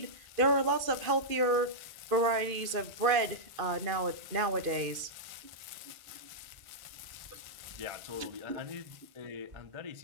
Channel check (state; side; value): late; left; 2.5 ms